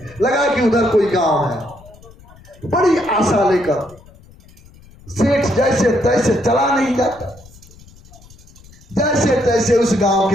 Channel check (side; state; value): left; noise; rumble, 24 dB below the sound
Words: लगा कि उधर कोई गांव है। बड़ी आशा लेकर सेठ जैसे तैसे चला नहीं जाता, जैसे तैसे उस गांव